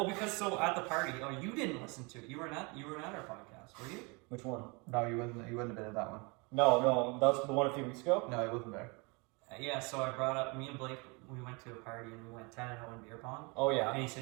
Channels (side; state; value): left; quieter; 29.4 dB